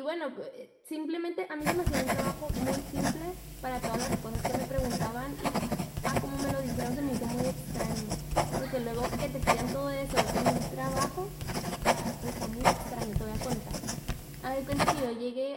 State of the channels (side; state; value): both; identical; correlation 1.00